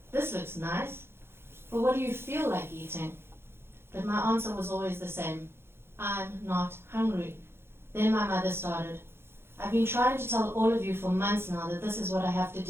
This looks nice. But what do you feel like eating? But my answer was always the same. I'm not hungry. Then my mother started. I've been trying to tell all of you for months now that this is what I have to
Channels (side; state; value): left; late; 0.12 ms